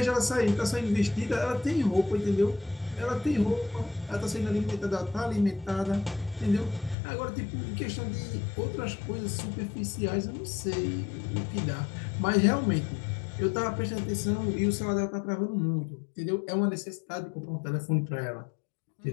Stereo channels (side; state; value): right; drops out; at 7.0 s